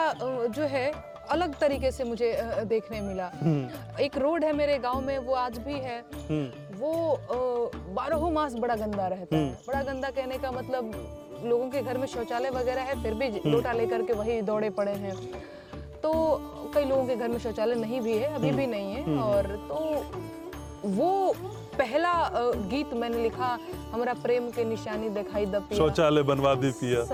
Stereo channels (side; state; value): both; identical; correlation 1.00